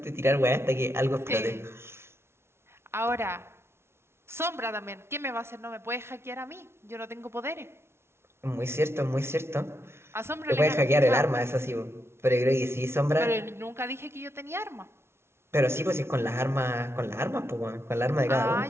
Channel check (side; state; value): left; late; 0.12 ms